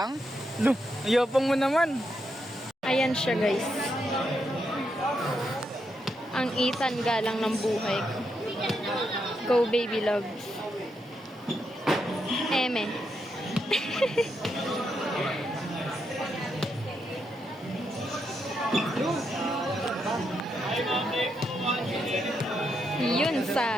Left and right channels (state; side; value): normal; both; correlation 0.81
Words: Lo, ayopang mo naman. Ayan siya guys. Ang Ethan galang ng buhay ko. Go baby love. Eme. Yun,